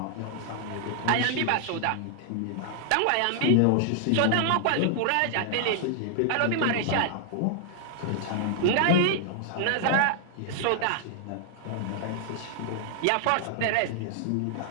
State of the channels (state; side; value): different; both; correlation 0.00